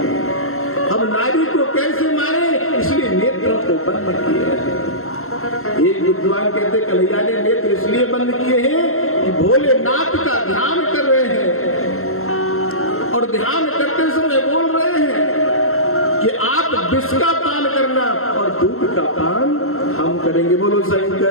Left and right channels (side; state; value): right; late; 0.62 ms